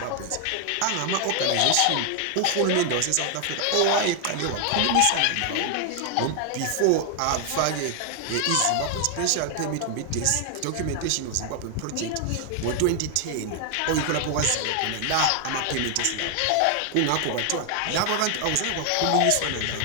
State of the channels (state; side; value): different; both; correlation 0.00